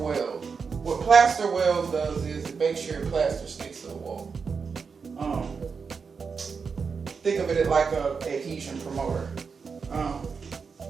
What plaster wells does is it makes sure your plaster sticks to the wall. Think of it like a adhesion promoter.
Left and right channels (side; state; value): left; quieter; 5.5 dB